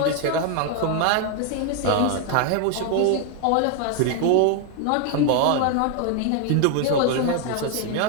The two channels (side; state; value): both; different; correlation 0.01